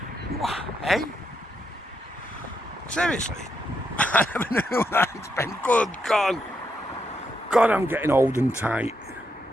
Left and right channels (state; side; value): normal; both; correlation 0.80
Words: What, eh? Seriously? I never knew that I'd spend. Good God. God, I'm getting old and tight.